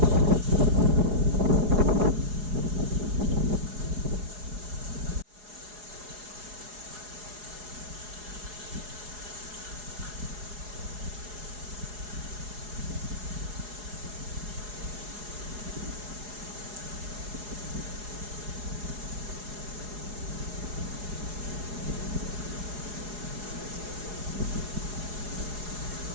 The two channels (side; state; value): left; late; 4.8 ms